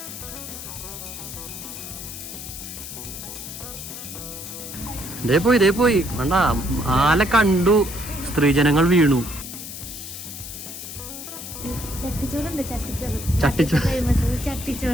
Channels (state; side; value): noise; left; hiss, 10 dB below the sound